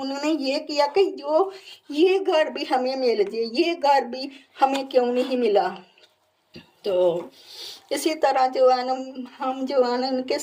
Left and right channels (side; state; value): both; identical; correlation 1.00